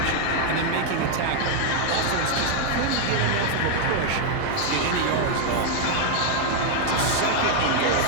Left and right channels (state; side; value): different; both; correlation 0.00